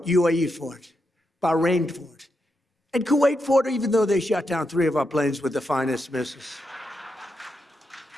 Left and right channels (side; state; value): both; normal; correlation 0.84